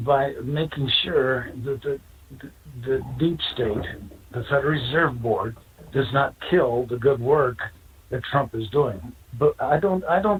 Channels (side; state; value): both; identical; correlation 1.00